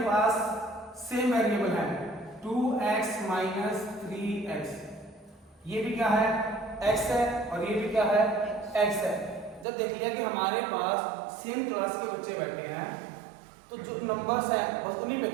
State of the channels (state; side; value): drops out; left; at 9.7 s